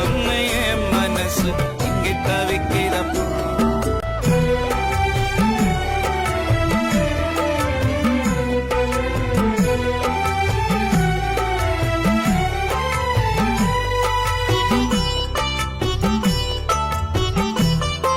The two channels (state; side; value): identical; both; correlation 1.00